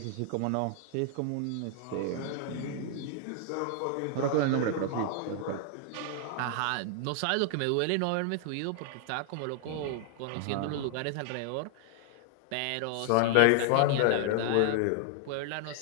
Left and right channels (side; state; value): both; different; correlation 0.00